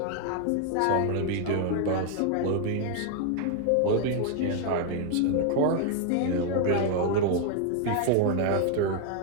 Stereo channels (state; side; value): different; both; correlation 0.00